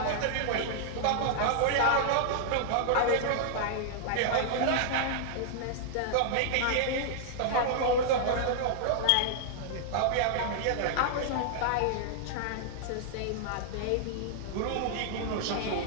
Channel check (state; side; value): different; both; correlation -0.01